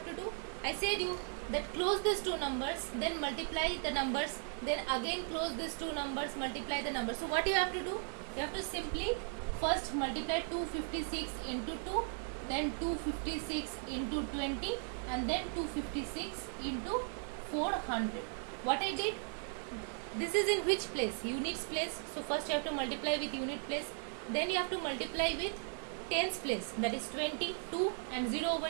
to do? I said you that close these two numbers, then multiply the numbers, then again close these two numbers, multiply the numbers. So what you have to do? You have to simply first multiply 256 into 2, then 256 into 20, and then 256 into 400. What I did? This is in which place? Units place. So first you have to multiply with unit place, then you have to multiply with tens place, that is 20, 2 and 0 over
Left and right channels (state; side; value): silent; left; 53 dB below the other